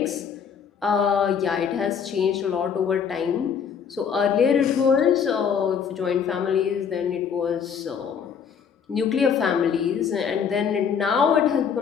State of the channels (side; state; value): right; quieter; 7.1 dB